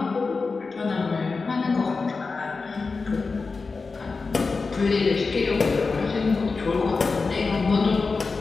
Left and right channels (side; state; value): right; quieter; 4.3 dB